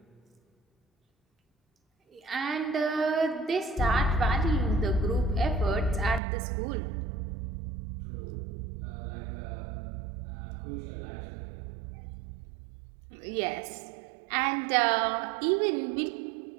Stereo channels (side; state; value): left; drops out; at 6.2 s